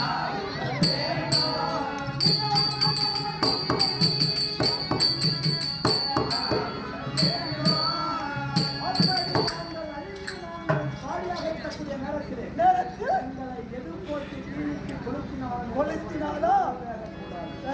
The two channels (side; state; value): both; identical; correlation 1.00